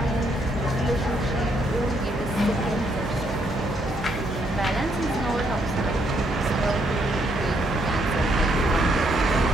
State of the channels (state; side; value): normal; both; correlation 0.73